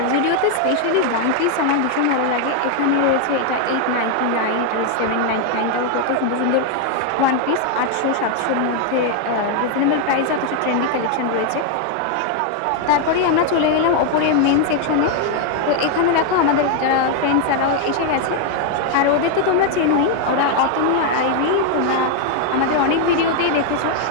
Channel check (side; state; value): both; different; correlation 0.00